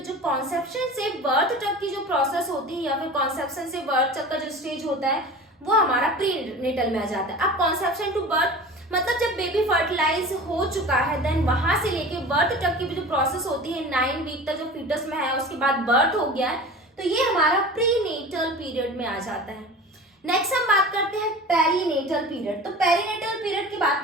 जो कॉन्सेप्शन से बर्थ तक की जो प्रोसेस होती है या फिर कॉन्सेप्शन से बर्थ तक का जो स्टेज होता है वो हमारा प्रीनेटल में आ जाता है। अब कॉन्सेप्शन टू बर्थ मतलब जब बेबी फर्टिलाइज हो चुका है देन वहां से लेके बर्थ तक की जो प्रोसेस होती है 9 वीक तक जो फीटस में है उसके बाद बर्थ हो गया है, तो ये हमारा प्रीनेटल पीरियड में आ जाता है। नेक्स्ट हम बात करते हैं पेरीनेटल पीरियड। तो पेरीनेटल पीरियड की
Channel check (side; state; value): both; normal; correlation 0.36